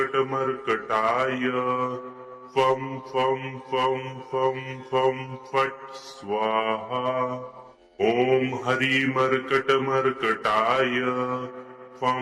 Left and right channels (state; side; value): identical; both; correlation 1.00